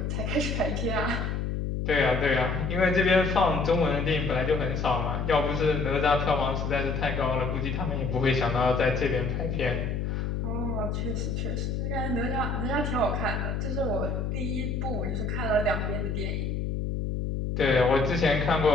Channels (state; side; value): noise; left; hum, 1 dB below the sound